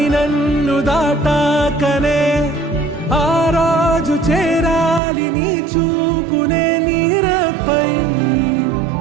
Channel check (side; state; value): left; drops out; at 5.0 s